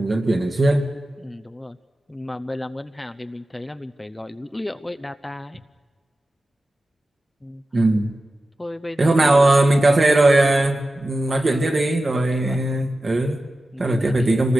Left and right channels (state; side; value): normal; both; correlation 0.94